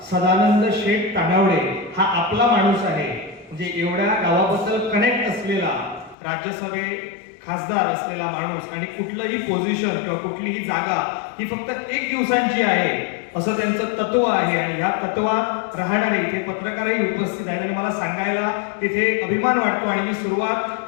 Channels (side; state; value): right; drops out; at 6.2 s